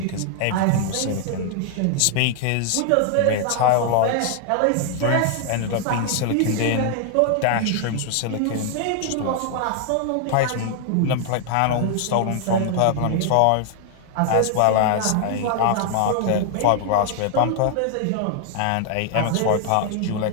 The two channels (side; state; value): both; different; correlation 0.00